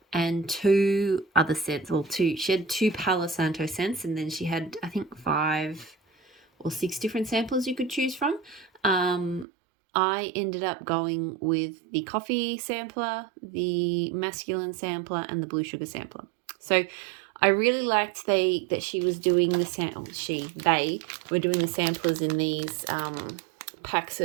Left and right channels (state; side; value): drops out; left; at 9.5 s